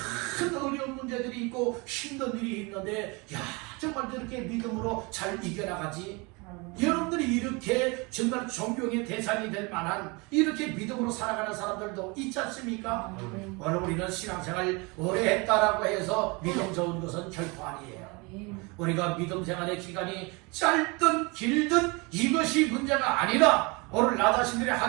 어려운 문제들이 있고 힘든 일이 있는데 야, 정말 저렇게 믿음으로 잘 이겨나가지? 여러분들이 이렇게 정말 존경의 대상이 될 만한 이렇게 믿음으로 살아가는 사람들도 있지 않습니까? 오늘 우리는 신앙생활 오래 했다라고 해서 믿음 좋은 것은 결코 아니에요. 우리가 믿음 생활의 기간이 짧든 길든 이것이 문제가 아니라 오늘 나 자신들이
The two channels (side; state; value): left; quieter; 27.8 dB